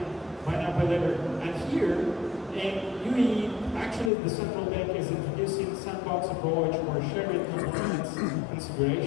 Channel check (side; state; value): right; drops out; at 4.1 s